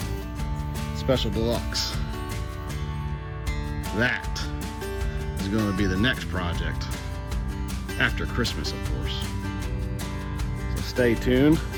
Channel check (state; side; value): identical; both; correlation 1.00